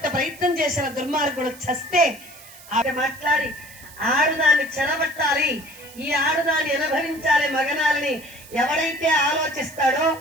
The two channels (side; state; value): right; noise; hiss, 20 dB below the sound